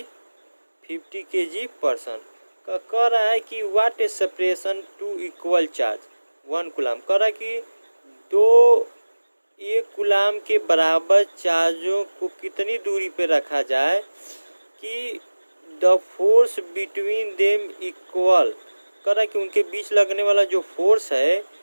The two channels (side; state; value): both; inverted; correlation -1.00